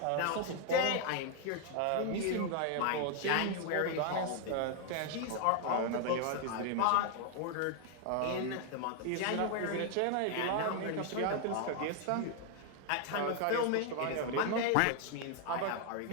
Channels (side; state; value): both; different; correlation 0.00